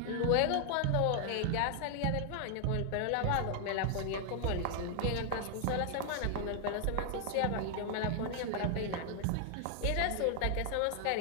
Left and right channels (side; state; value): both; different; correlation 0.00